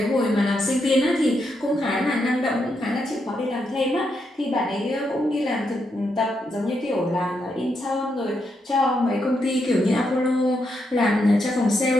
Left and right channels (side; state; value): both; normal; correlation 0.81